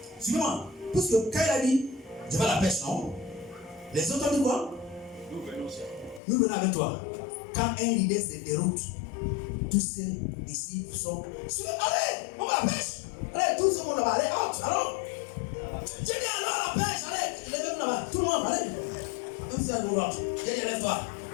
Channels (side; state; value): right; drops out; at 6.2 s